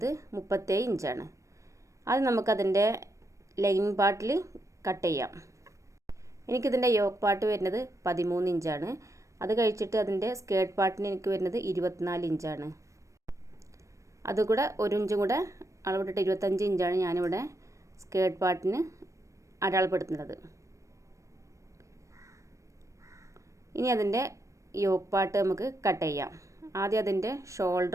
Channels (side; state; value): left; late; 0.15 ms